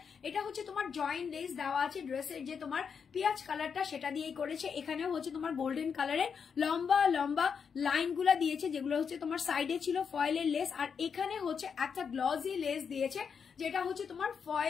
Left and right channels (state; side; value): quieter; right; 6.5 dB